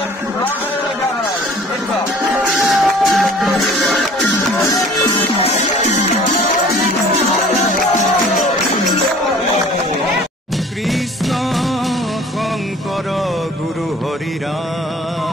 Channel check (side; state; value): both; normal; correlation 0.49